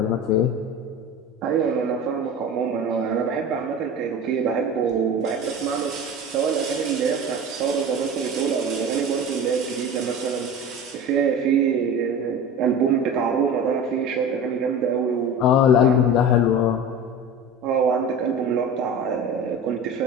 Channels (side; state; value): both; normal; correlation 0.33